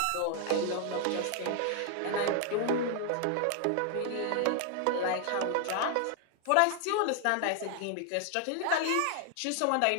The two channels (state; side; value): different; both; correlation 0.00